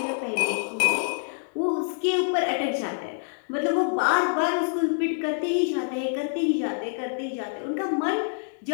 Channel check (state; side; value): silent; right; digital silence